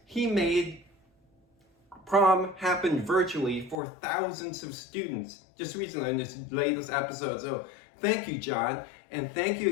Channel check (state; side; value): drops out; right; at 3.8 s